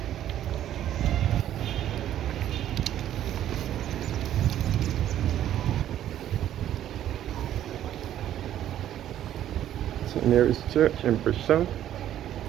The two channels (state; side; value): quieter; left; 11.6 dB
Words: St. Mary's Church in Bridgetown.